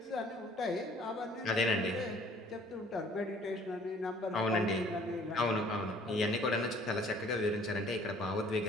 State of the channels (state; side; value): normal; both; correlation 0.56